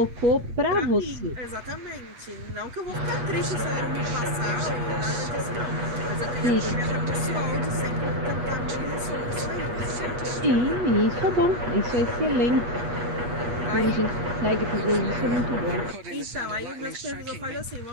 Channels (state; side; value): late; left; 8.4 ms